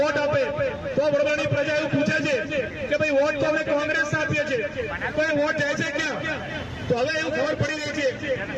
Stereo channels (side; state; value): both; identical; correlation 1.00